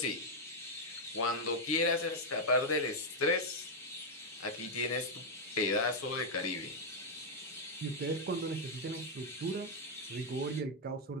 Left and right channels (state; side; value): normal; both; correlation -0.01